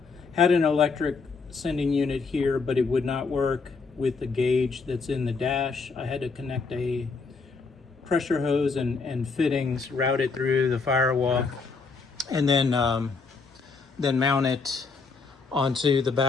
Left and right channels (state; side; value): quieter; right; 4.5 dB